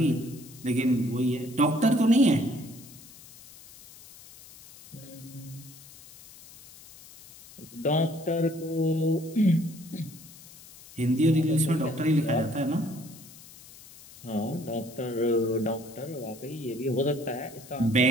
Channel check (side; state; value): left; noise; hiss, 20 dB below the sound